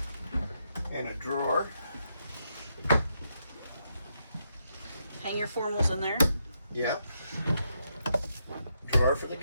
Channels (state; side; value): inverted; both; correlation -0.80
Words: And a drawer. Hang your formals in there. Yep. Drawer for the